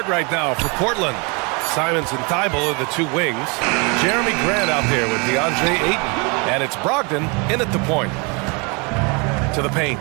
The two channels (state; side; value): quieter; left; 31.0 dB